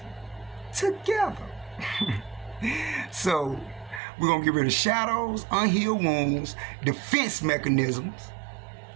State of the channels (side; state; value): left; drops out; at 4.0 s